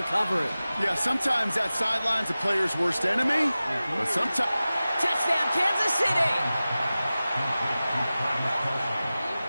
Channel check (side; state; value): both; inverted; correlation -0.96